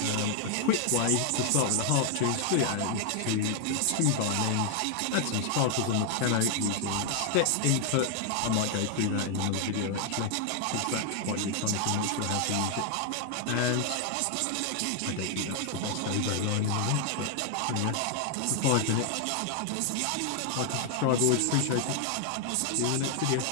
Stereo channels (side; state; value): both; different; correlation 0.00